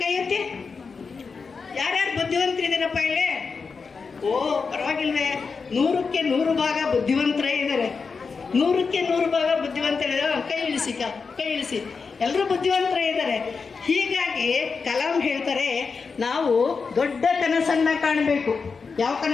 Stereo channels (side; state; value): right; quieter; 5.0 dB